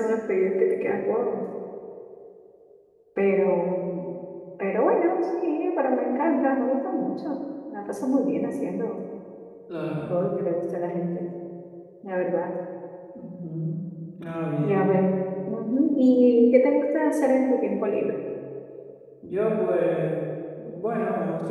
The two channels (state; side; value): identical; both; correlation 1.00